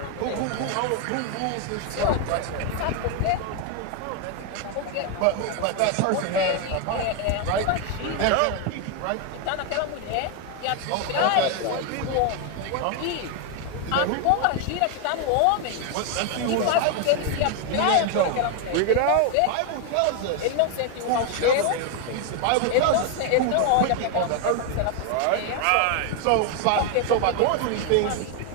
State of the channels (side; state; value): both; different; correlation 0.01